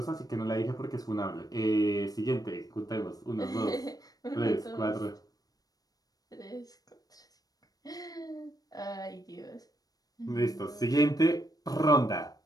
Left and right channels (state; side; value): late; right; 0.18 ms